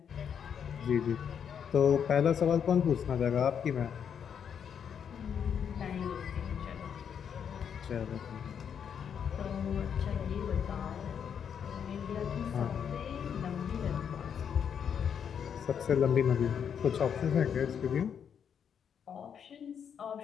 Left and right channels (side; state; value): right; quieter; 7.8 dB